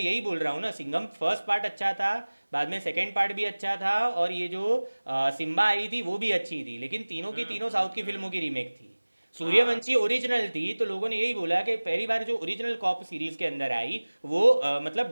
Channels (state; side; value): inverted; both; correlation -1.00